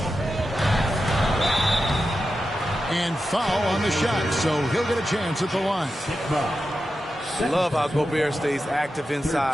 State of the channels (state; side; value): normal; both; correlation 0.90